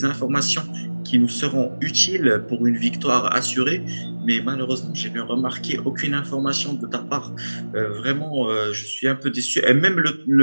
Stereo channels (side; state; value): both; inverted; correlation -1.00